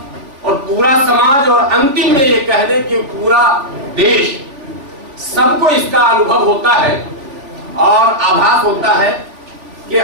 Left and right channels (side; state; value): left; late; 3.5 ms